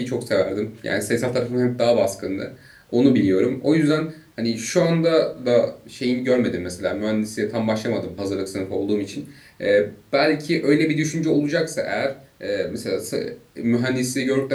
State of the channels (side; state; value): both; identical; correlation 1.00